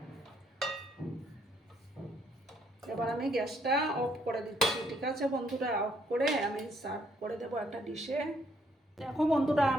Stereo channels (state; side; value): normal; both; correlation 0.69